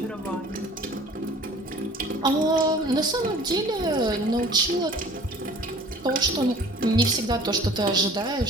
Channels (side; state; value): both; normal; correlation 0.48